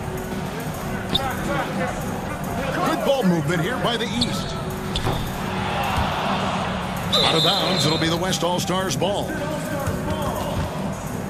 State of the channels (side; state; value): both; identical; correlation 1.00